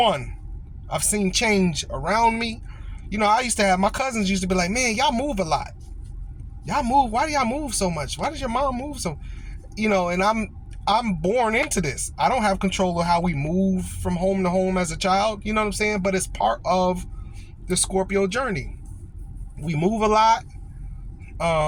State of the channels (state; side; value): identical; both; correlation 1.00